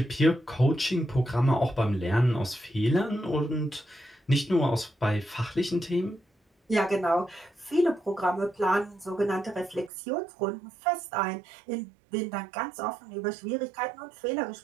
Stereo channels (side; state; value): left; drops out; at 9.9 s